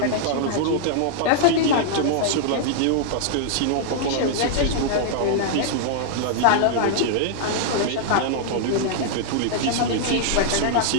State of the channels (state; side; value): different; both; correlation -0.01